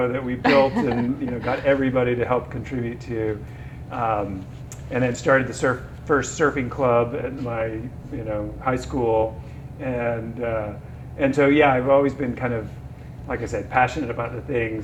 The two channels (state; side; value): identical; both; correlation 1.00